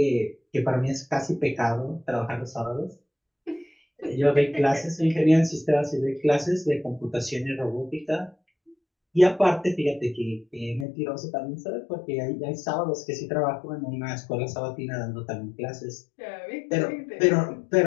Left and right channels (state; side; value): drops out; right; at 10.9 s